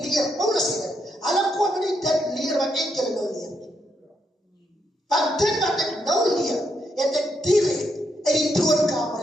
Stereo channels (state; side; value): normal; both; correlation 0.78